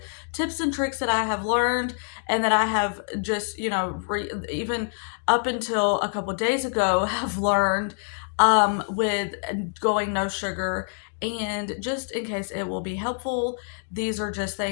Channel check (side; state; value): right; silent; digital silence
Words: tips and tricks that I have learned and that I have just, even up until a couple days ago have learned with going no sugar. And just in case it will be helpful, these are just